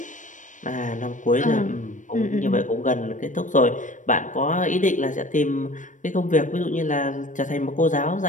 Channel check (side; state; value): right; late; 0.37 ms